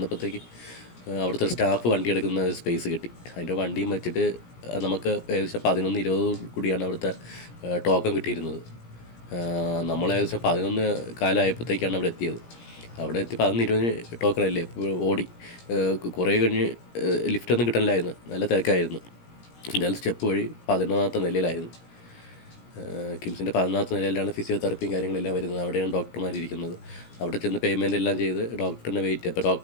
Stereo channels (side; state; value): right; late; 17 ms